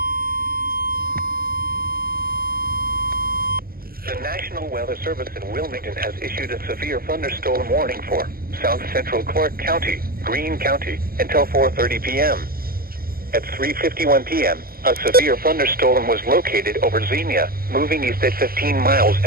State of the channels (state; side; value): late; left; 0.43 ms